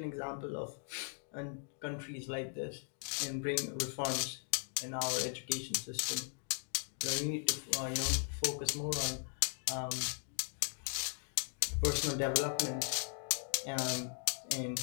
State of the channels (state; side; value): silent; right; 52 dB below the other